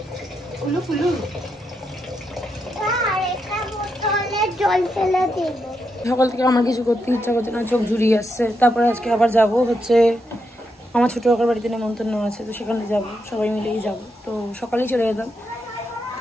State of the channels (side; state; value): both; normal; correlation 0.83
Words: উলু ফুলু। সকাল থেকে আমার কিছু করতে ইচ্ছা করছে না, চোখ জুড়িয়ে আসছে। তারপরে আজকে আবার যাব হচ্ছে আমার ছোটো কাকার বাড়িতে নেমন্তন্ন আছে, তো সেখানে যাব, সবাই মিলেই যাব। তো সকালেই চলে যেতাম,